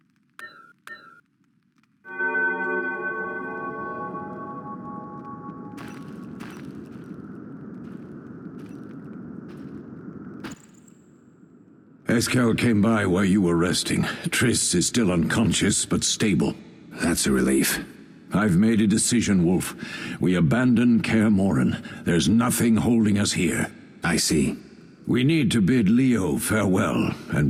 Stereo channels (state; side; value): identical; both; correlation 1.00